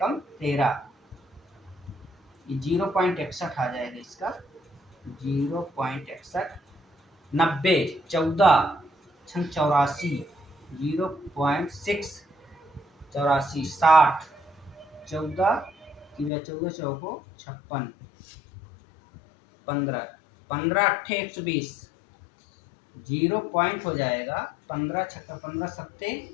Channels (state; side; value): drops out; right; at 16.3 s